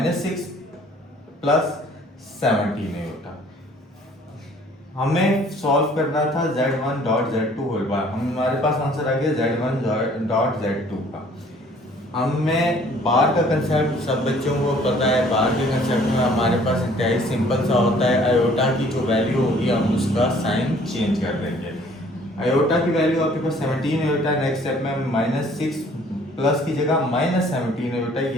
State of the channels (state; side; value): normal; both; correlation 0.56